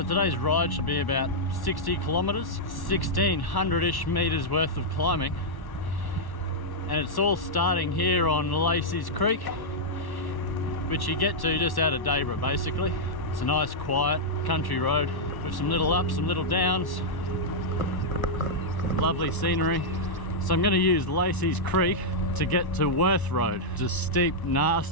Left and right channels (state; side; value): late; right; 1.1 ms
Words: today's ride should be about 60 kilometers, 1600-ish meters worth of climbing. And it's all starting here on Laceys Creek, which you get to just out of Dayboro basically. It's a nice quiet country road with some little ups, some little downs, lovely scenery. So I'm going to use Laceys Creek to get to Wirth Road. It's a steep,